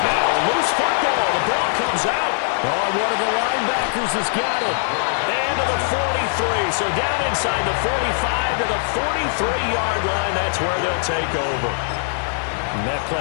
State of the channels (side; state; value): right; silent; 58 dB below the other